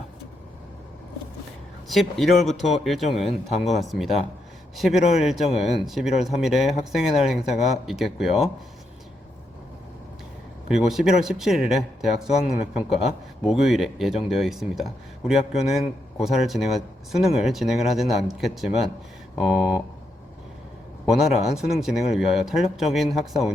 11월부터 일정은 다음과 같습니다. 11월 일정은 11월 3일에 학생의 날 행사가 있겠고요. 그리고 11월 17일에 대학 수학능력평가 목요일에 예정되어 있습니다. 우리 학교는 수능을 진행을 하지는 않겠지만 원활한 수능 진행을 위하여 탄력적인 학사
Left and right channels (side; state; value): both; normal; correlation 0.81